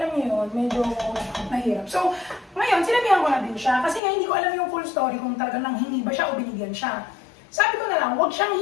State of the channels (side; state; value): right; drops out; at 4.0 s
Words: niyo yun, medyo mahirap. So ngayon, sinabihan ko na din siya, kasi nga hindi ko alam yung full story kung talagang nanghingi ba siya o binigyan siya. Sabi ko na lang, huwag siyang